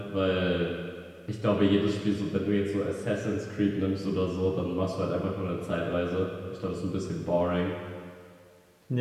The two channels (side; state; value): both; identical; correlation 1.00